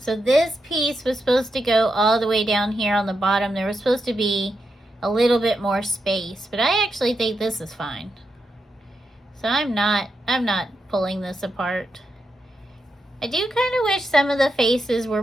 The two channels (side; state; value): both; normal; correlation 0.85